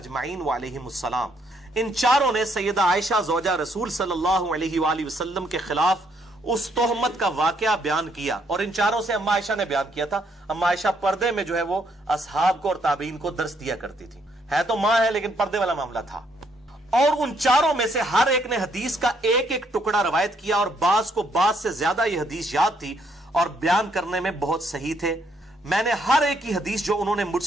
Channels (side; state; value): both; normal; correlation 0.71